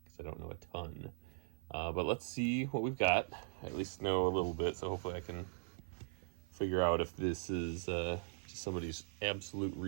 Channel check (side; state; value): left; silent; 51 dB below the other